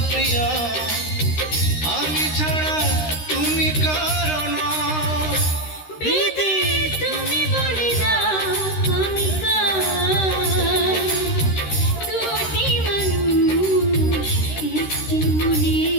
প্রিয়া, আমি ছাড়া তুমি কারণ। বিধি তুমি বলে দাও আমি কার, দুটি মানুষ একটি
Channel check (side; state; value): right; late; 13 ms